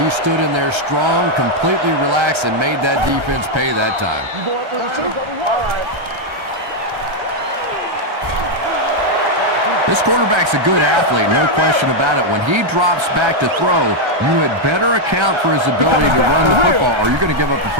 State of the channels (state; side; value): late; left; 1.3 ms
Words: stood in there strong, completely relaxed, and made that defense pay that time. This quarterback's a good athlete, no question about it. When he drops back to throw, you had better account for his ability to run the football, or you're going to give up a